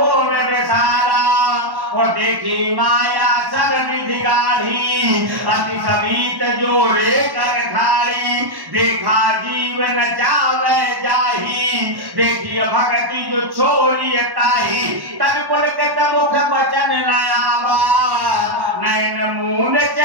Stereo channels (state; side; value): late; left; 1.1 ms